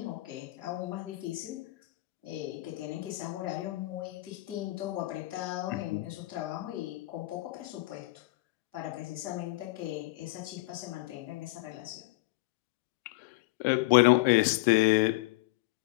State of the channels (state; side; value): quieter; right; 20.8 dB